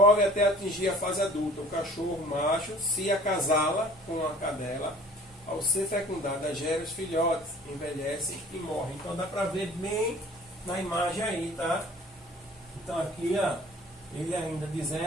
até atingir a fase adulta. O cachorro macho se acasala com a cadela. Ao ser fecundada, gera os filhotes, envelhecem e morrem. Então, dá para ver bem na imagem aí, tá? Então, aqui, ó, ele ainda de entre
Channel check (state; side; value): normal; both; correlation 0.49